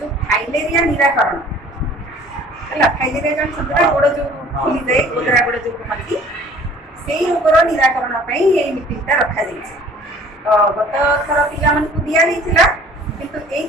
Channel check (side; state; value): both; normal; correlation 0.51